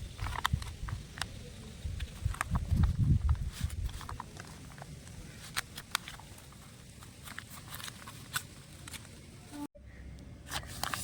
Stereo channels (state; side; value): identical; both; correlation 1.00